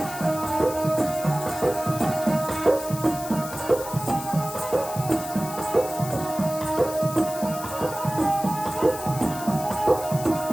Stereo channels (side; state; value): left; noise; hiss, 12 dB below the sound